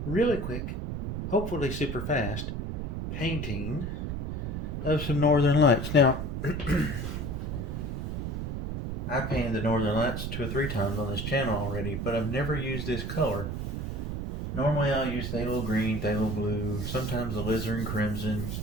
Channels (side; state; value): right; noise; rumble, 3 dB below the sound